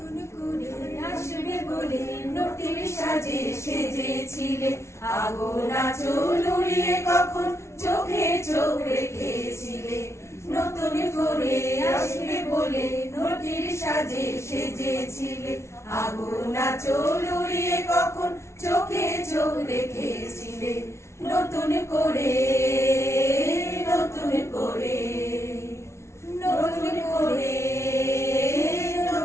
করে আসবে বলে নটির সাজে সেজেছিলে, আগুন আঁচল উড়িয়ে কখন চোখে চোখ রেখেছিলে। নতুন করে আসবে বলে নটির সাজে সেজেছিলে, আগুন আঁচল উড়িয়ে কখন চোখে চোখ রেখেছিলে। নতুন করে নতুন করে নতুন করে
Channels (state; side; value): late; right; 0.13 ms